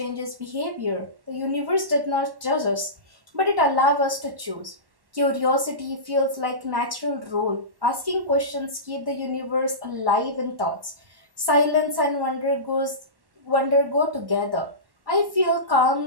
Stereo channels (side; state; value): left; late; 1.1 ms